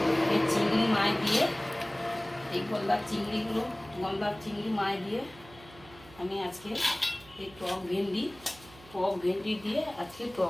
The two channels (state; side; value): noise; right; hum, 22 dB below the sound